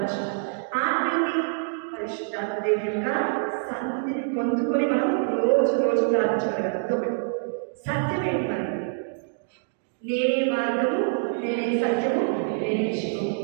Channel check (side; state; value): left; silent; digital silence